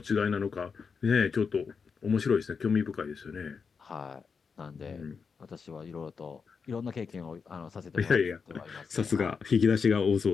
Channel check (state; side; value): quieter; right; 5.6 dB